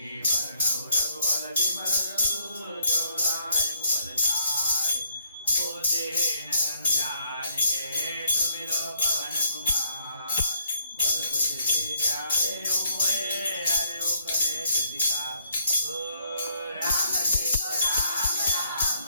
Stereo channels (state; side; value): inverted; both; correlation -0.69